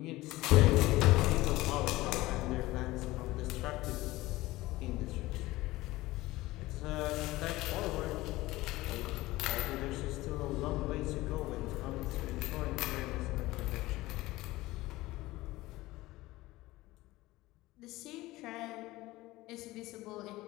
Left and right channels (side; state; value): right; quieter; 18.6 dB